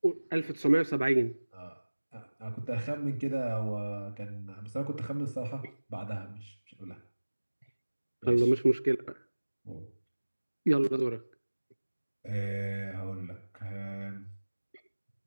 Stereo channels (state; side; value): inverted; both; correlation -1.00